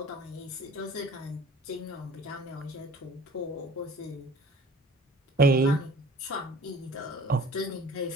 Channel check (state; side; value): normal; both; correlation 0.48